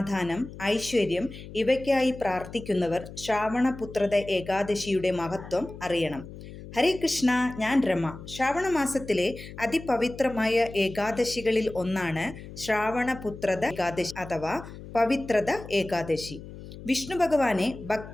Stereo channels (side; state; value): left; noise; hum, 14 dB below the sound